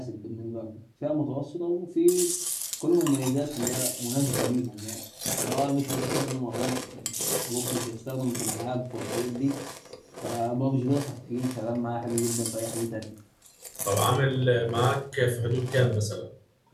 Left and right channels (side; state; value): both; identical; correlation 1.00